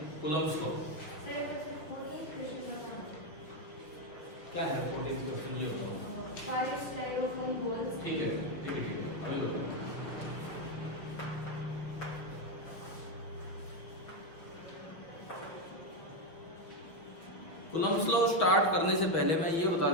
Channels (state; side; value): late; right; 6.2 ms